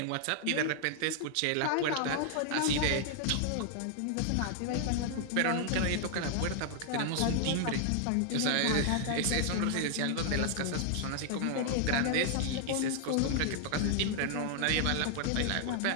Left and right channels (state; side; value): different; both; correlation 0.00